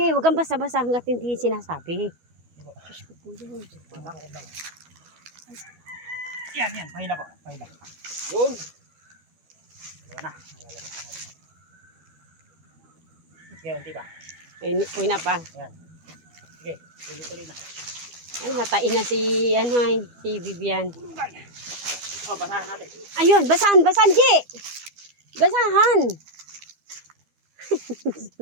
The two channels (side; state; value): left; late; 12 ms